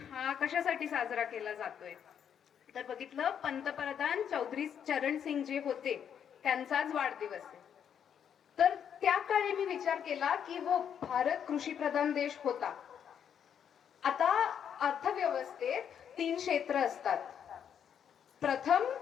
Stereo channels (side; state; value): right; quieter; 8.4 dB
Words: हा कशासाठी साजरा केला जातोय. तर बघितलं पंतप्रधान चौधरी चरण सिंग जे होते त्यांचाच वाढदिवस आहे. तर त्या काळी मी विचार केला की हो भारत कृषी प्रधान देश होता. आता अर्थव्यवस्थेत 3 क्षेत्र असतात. प्रथम,